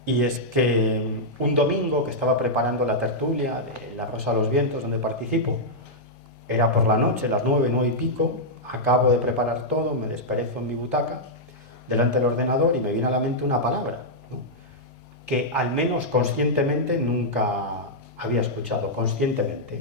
y es que un domingo que estaba preparando la tertulia de La Rosa de los Vientos, donde participo, era por la noche, las 9, 9 y pico, acabo de preparar todo, me desperezo en mi butaca, delante del ordenador, y me viene a la mente una palabra, ¿no? Que al menos conscientemente nunca había escuchado,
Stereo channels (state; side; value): normal; both; correlation -0.07